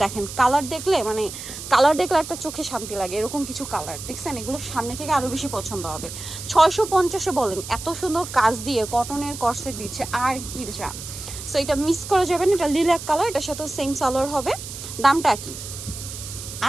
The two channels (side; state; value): right; noise; hiss, 10 dB below the sound